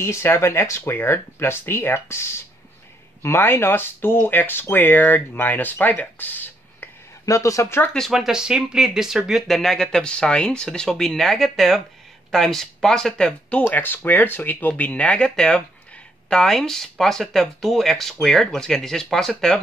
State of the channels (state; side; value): normal; both; correlation 0.73